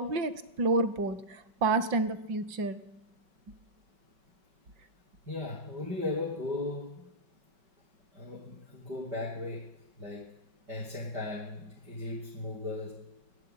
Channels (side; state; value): left; late; 5.3 ms